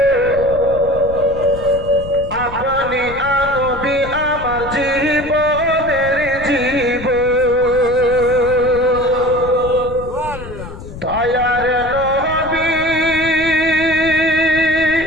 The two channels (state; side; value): noise; left; rumble, 12 dB below the sound